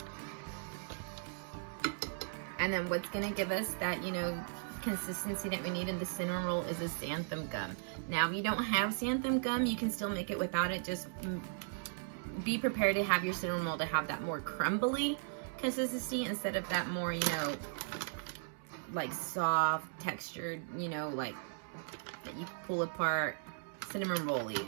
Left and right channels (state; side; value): silent; left; 53 dB below the other